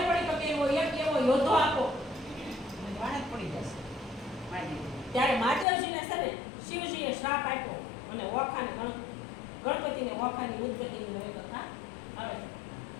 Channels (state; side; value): drops out; right; at 5.7 s